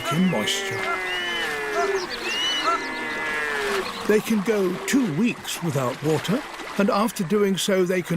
in moisture. They can go 2 weeks without water, and after doing so they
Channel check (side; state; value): both; identical; correlation 1.00